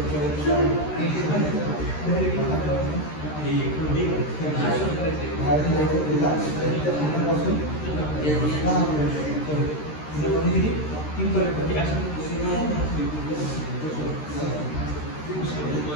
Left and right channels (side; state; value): right; late; 13 ms